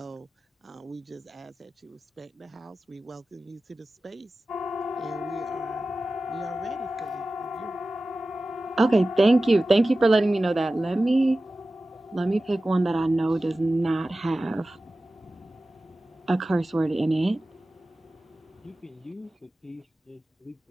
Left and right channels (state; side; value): normal; both; correlation 0.95